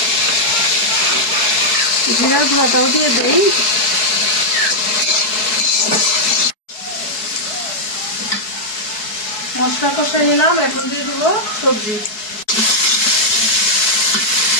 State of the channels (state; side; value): late; right; 4.7 ms